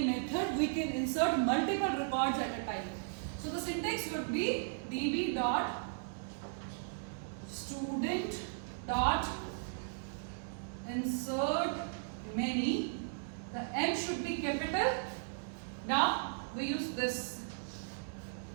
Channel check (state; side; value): silent; left; digital silence